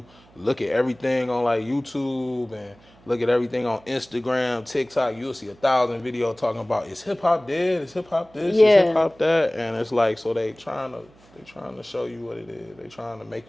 look at everything on like YouTube and look at everything on Instagram, TikTok, you'll see 1,000 videos talking about is hip hop dead? Is hip hop this? Is hip Yeah. hop that? And it's like so they trying to show you what it is. They trying to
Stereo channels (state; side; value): noise; right; hum, 28 dB below the sound